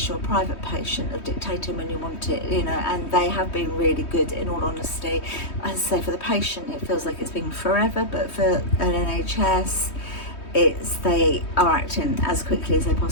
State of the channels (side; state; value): right; late; 3.2 ms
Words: you're a private patient, of dictating when you want it, you know. And they have been really good, in all honesty. As I say, for the patient, it feels like it's been forever, but for an NHS, they are acting as quickly as they